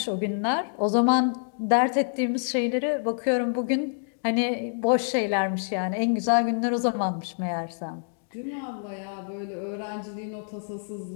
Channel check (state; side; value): silent; right; digital silence